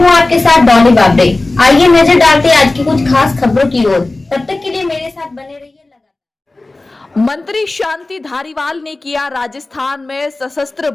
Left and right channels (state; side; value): quieter; right; 3.0 dB